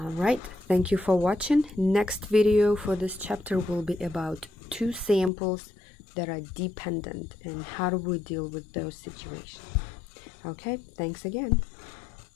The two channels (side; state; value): right; drops out; at 5.3 s